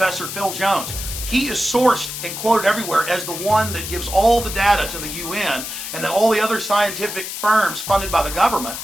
Phil Jones. He is sourced and quoted everywhere as the one that gives all the data to the UN, and then all the other scientific firms funded by the government,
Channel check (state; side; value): noise; left; hiss, 7 dB below the sound